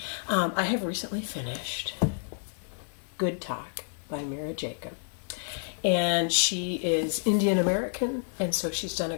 I have recently finished Good Talk by Mira Jacob. And she is Indian American, and so she's done a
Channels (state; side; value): silent; right; digital silence